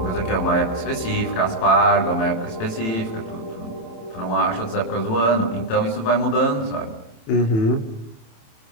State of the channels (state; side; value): late; right; 27 ms